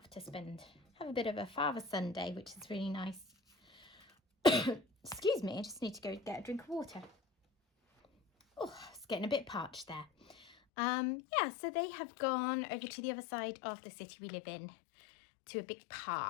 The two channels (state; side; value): drops out; right; at 10.6 s